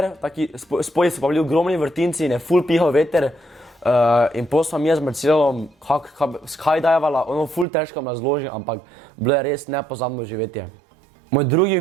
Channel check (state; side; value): drops out; left; at 7.7 s